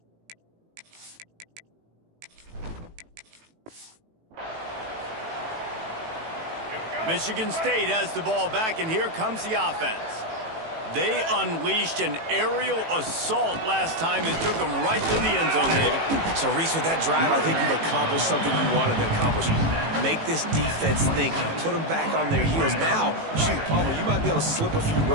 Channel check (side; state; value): left; late; 18 ms